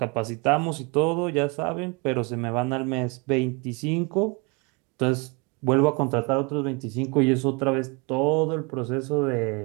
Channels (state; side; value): quieter; left; 30.2 dB